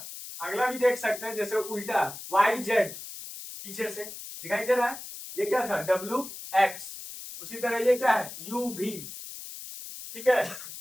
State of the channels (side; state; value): left; noise; hiss, 11 dB below the sound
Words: अगला भी देख सकते हैं, जैसे उल्टा YZ पीछे से दिखाई दे रहा है, ये क्या था? WX। उसी तरह ये क्या है? UV, ठीक है।